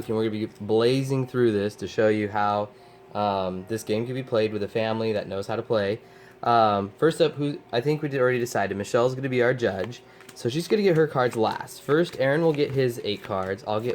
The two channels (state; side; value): identical; both; correlation 1.00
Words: We're gonna be blazing through this to show you how this game can be played with a family that knows how to play. First up, who I think we already decided, Michelle's gonna be our judge, so she's gonna get her cards last. First, Aaron will get his 8 cards. I'll